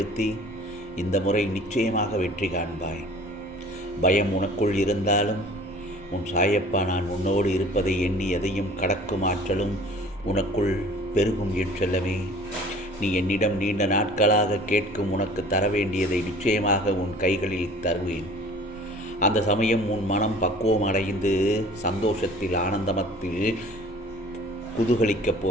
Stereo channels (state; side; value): normal; both; correlation 0.48